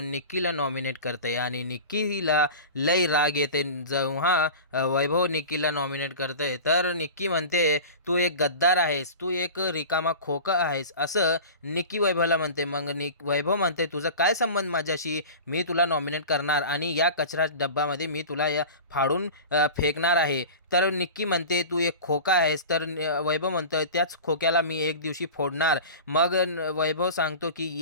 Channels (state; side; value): inverted; both; correlation -0.34